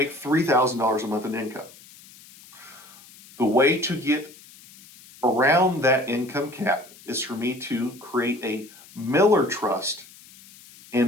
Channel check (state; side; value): noise; left; hiss, 22 dB below the sound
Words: $3,000 a month in income. The way to get around that income cap is for me to create a Miller Trust